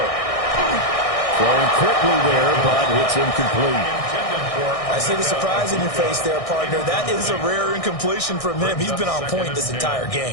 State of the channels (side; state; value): right; late; 1.6 ms